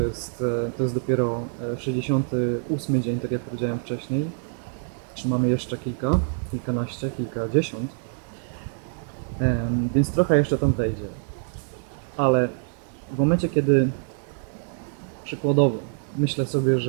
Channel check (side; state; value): left; silent; 61 dB below the other